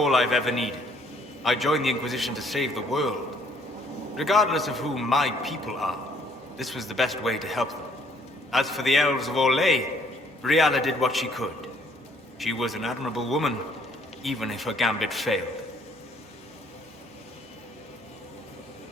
I've ever needed. I joined the Inquisition to save the world. Regardless of who my people are, this was the best way to help them. As for the elves of Orlais, Briala did what she could. She was an admirable woman, even if her gambit failed.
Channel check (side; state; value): both; normal; correlation 0.63